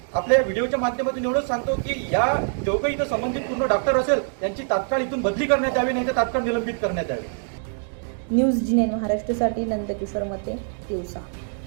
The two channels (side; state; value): left; silent; 59 dB below the other